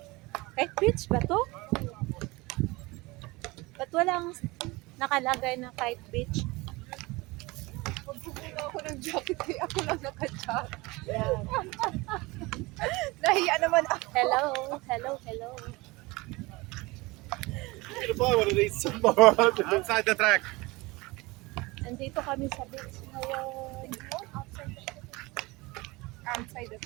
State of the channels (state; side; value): quieter; left; 23.1 dB